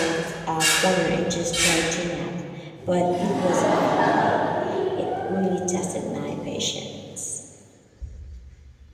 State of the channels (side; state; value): both; identical; correlation 1.00